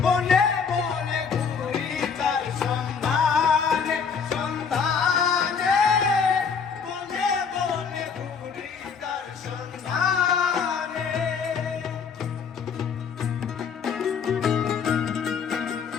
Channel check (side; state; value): right; quieter; 6.1 dB